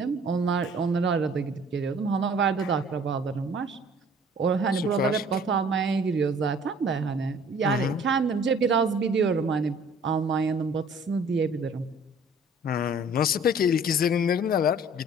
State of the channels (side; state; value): both; normal; correlation 0.52